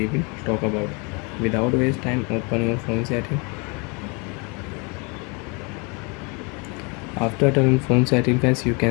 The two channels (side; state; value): right; quieter; 31.5 dB